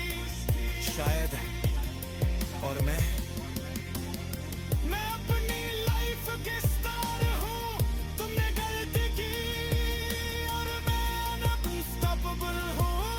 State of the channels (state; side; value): identical; both; correlation 1.00